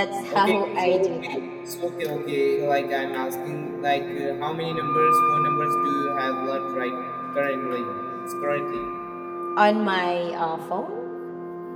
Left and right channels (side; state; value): both; identical; correlation 1.00